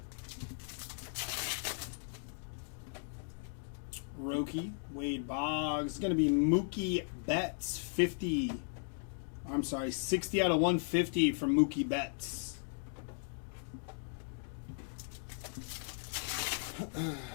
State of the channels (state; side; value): silent; right; digital silence